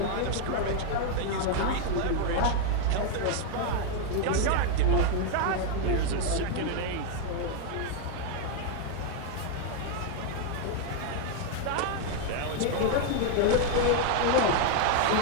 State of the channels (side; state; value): both; different; correlation 0.01